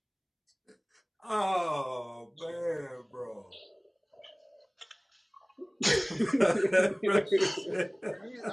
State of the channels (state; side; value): identical; both; correlation 1.00